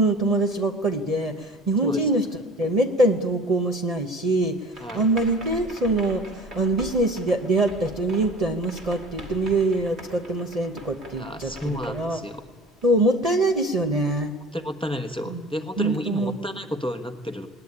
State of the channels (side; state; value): both; normal; correlation 0.42